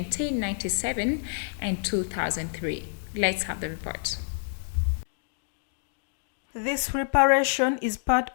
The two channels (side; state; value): right; silent; digital silence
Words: and 2003. Let's have the report. This reparation is part